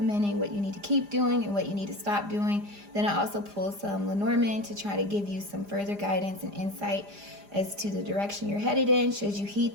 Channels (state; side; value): late; left; 4.9 ms